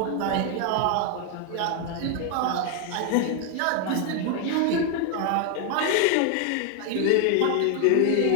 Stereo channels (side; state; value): both; different; correlation 0.01